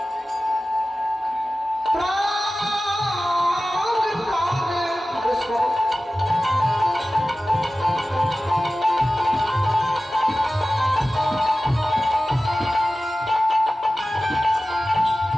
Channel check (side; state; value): both; normal; correlation 0.95